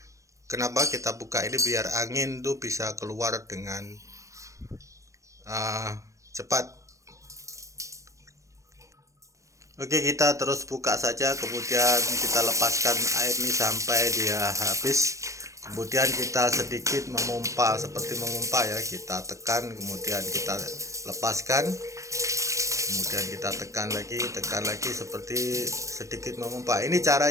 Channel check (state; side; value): late; left; 0.15 ms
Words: kenapa kita buka ini, biar angin tuh bisa keluar dengan cepat. Oke, kita terus buka saja, kemudian kita lepaskan air ini sampai dia habis. Kemudian kita sedikit memompa, seperti memompa ya, kita tekan, kemudian kita lepaskan, kemudian kita tekan lagi seperti sedikit memompa. Ini